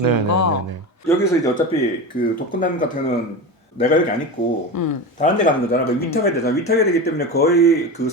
거. 네네네. 여기서 이제 어차피 그 독거남 같은 경우는 내가 여기 안 있고 다른 데 가는 거잖아. 그 위탁해야 되잖아. 위탁해야 되기 때문에 거의 그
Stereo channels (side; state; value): both; normal; correlation 0.24